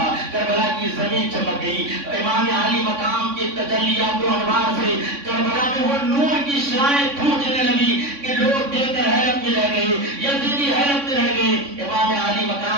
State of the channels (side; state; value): left; late; 3.6 ms